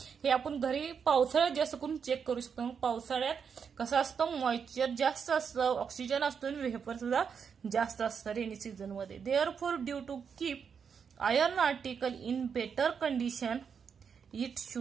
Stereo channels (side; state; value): left; quieter; 6.6 dB